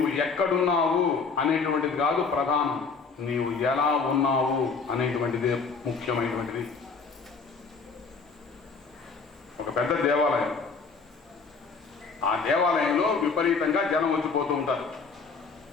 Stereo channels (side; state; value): right; quieter; 4.8 dB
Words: ఎక్కడున్నావు అనేటువంటిది కాదు ప్రధానం, నీవు ఎలా ఉన్నావు అనేటువంటిదే ముఖ్యమైనటువంటిది. ఒక పెద్ద దేవాలయం, ఆ దేవాలయంలో విపరీతంగా జనం వచ్చిపోతూ ఉంటారు.